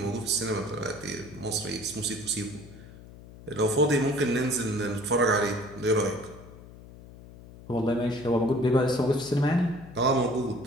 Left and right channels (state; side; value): noise; left; hum, 18 dB below the sound